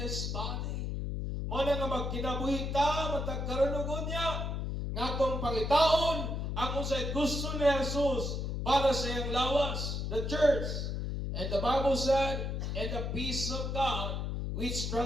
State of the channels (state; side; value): noise; left; hum, 2 dB below the sound